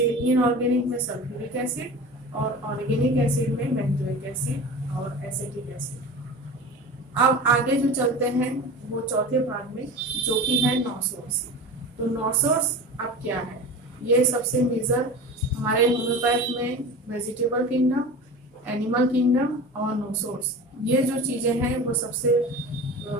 इनऑर्गेनिक में सल्फ्यूरिक एसिड और ऑर्गेनिक एसिड में बेंजोइक एसिड और एसिटिक एसिड। अब आगे जो चलते हैं वो चौथे भाग में, जो कि है नो सोर्स। तो नो सोर्स अब क्या है? ये सबसे मेजर हमारे होम्योपैथ में वेजिटेबल किंगडम, एनिमल किंगडम और नो सोर्स, ये जो चीजें हैं वो सबसे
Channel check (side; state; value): both; normal; correlation 0.33